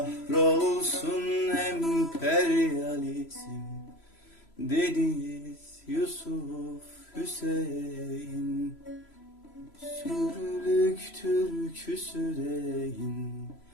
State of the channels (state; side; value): late; right; 3.0 ms